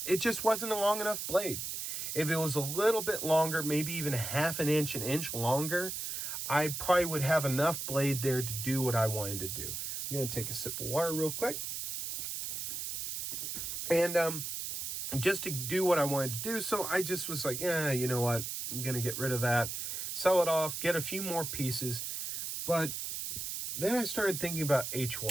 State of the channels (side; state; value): right; noise; hiss, 4 dB below the sound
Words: just wasn't a long enough blade. If it was a little bit longer, maybe even an inch longer, I probably would have enough blade there to do what I wanted to do. I'm going to take a sip of water real quick. And just to do what I wanted to do, so I just was like, you know what? I'm going to get rid of that, sell it off, get a few more pieces. But then I started thinking about